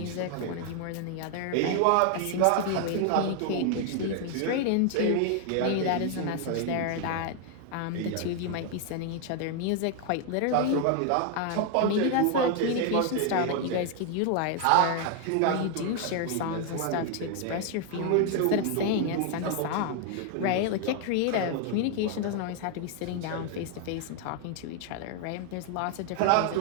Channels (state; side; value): different; both; correlation 0.00